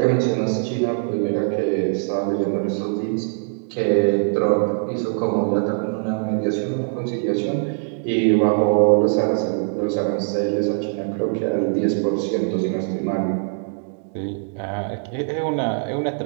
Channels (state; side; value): silent; left; digital silence